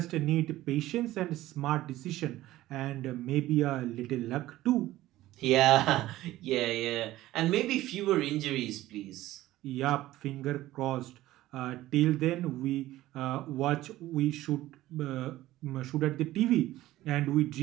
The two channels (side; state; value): left; quieter; 15.8 dB